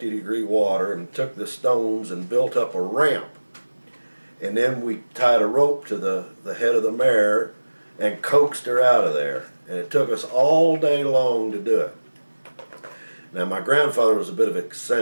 water and took the stones and built up a ramp. And then we tied a rope to the head of the mare and coaxed her out of there. And it took us all day long to do it. Now, my grandfather was a bit of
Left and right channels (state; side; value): inverted; both; correlation -1.00